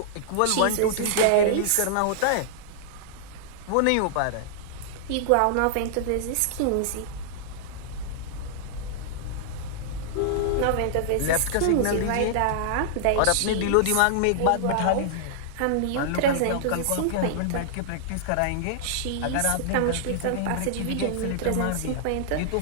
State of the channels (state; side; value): different; both; correlation -0.01